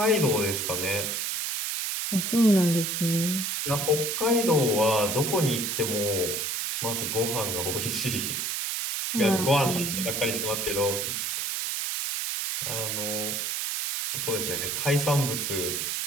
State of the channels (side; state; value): right; noise; hiss, 1 dB below the sound